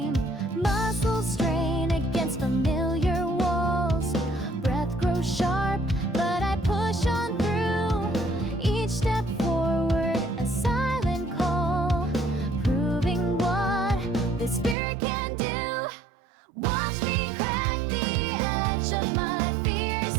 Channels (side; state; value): left; drops out; at 14.8 s